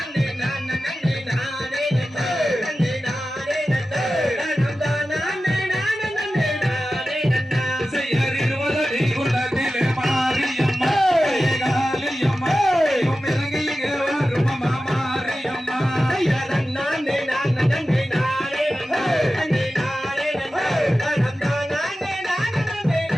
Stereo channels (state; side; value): normal; both; correlation 0.94